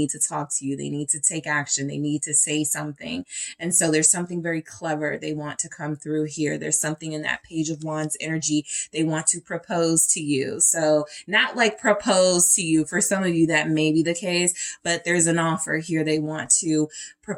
to talk to you. They need to take action. They need to say something. And so there's something very clever they want to come through here. There's something in that Page of Wands energy. They want to propose to you. So not like propose to you. For some of you, that may be the case, but there's an offer here. They want to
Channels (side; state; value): both; identical; correlation 1.00